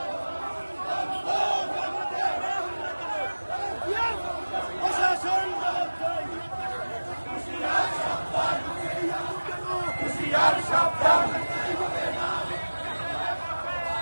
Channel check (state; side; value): inverted; both; correlation -1.00